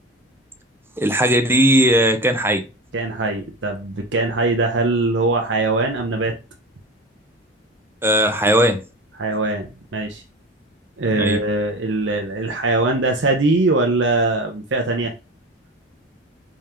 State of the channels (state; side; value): normal; both; correlation 0.30